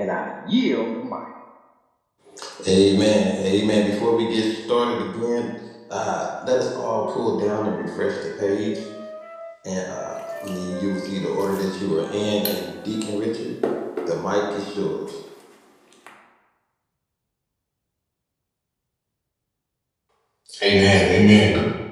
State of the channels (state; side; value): identical; both; correlation 1.00